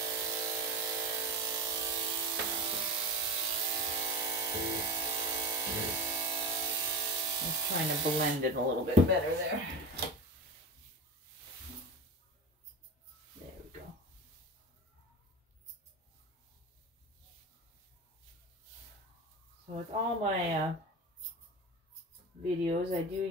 Trying to blend it a little bit better there. There we go. So with all my videos, I do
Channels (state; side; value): normal; both; correlation 0.25